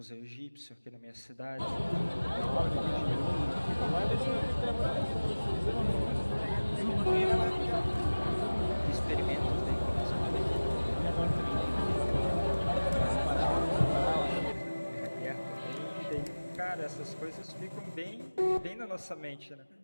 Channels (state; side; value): inverted; both; correlation -1.00